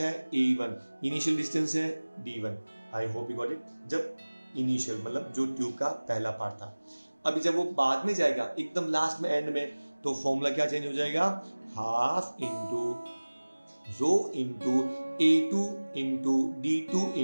A1, initial distance है D1. I hope you got it. जब initial मतलब जो tube का पहला पार्ट था. अभी जब वो बाद में जाएगा एकदम लास्ट में एंड में, तो फॉर्मूला क्या चेंज हो जाएगा? Half into rho into A2 into D2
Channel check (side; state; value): both; inverted; correlation -1.00